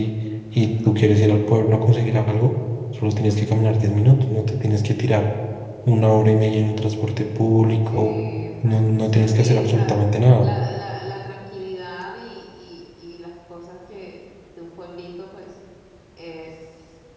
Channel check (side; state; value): both; identical; correlation 1.00